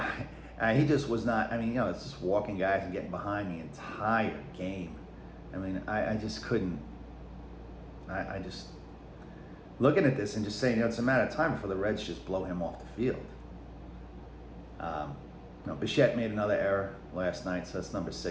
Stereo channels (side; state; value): both; identical; correlation 1.00